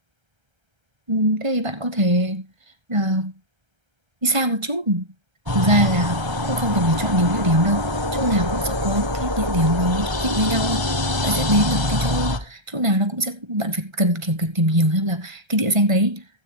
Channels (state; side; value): late; left; 1.3 ms